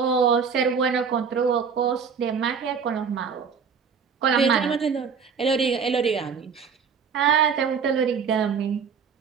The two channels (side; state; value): left; quieter; 6.3 dB